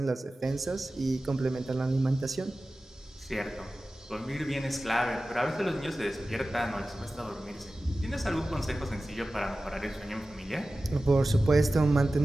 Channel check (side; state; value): both; normal; correlation 0.96